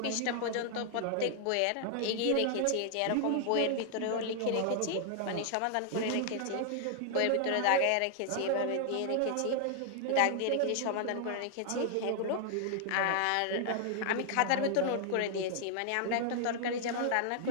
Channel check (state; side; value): different; both; correlation 0.00